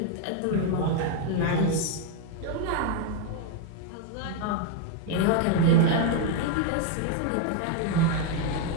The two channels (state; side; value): different; both; correlation 0.00